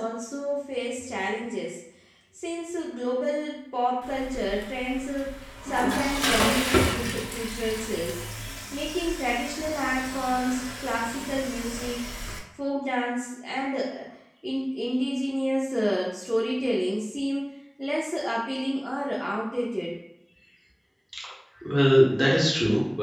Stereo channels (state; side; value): identical; both; correlation 1.00